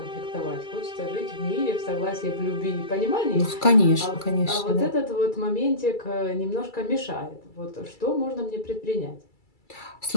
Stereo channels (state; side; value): late; right; 2.3 ms